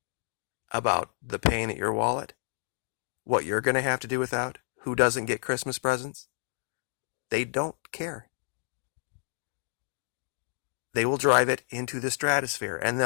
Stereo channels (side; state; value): right; silent; digital silence